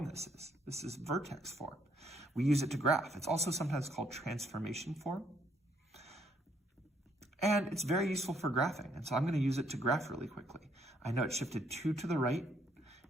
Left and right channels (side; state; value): both; normal; correlation 0.70